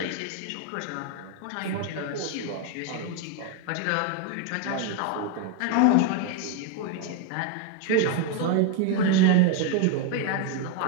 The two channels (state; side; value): different; both; correlation 0.01